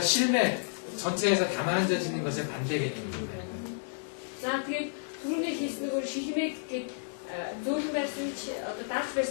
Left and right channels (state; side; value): silent; right; digital silence